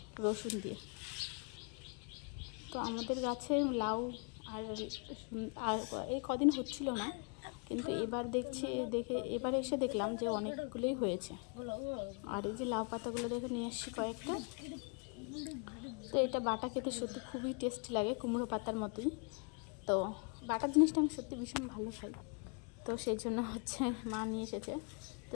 রসুন দিয়ে। তো আমাদের গাছে লাউ আর এই কদিন হচ্ছিল না, কিন্তু এবার এসে দেখলাম যে অনেকগুলোই হয়েছে। আর এই যে লাউ পাতাগুলো দেখে নিয়ে এসেছি কয়েকটা। তো এটা বাটা খেতে সত্যি খুবই টেস্টি লাগে, কুমড়ো পাতার মতোই। তো বাটা জিনিসটা আমি সত্যি ভীষণ ভালো খাই, তো সেই জন্য হচ্ছে মা নিয়ে এসেছে।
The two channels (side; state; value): right; quieter; 37.1 dB